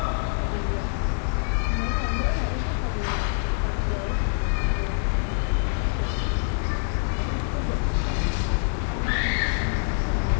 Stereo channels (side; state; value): right; silent; 60 dB below the other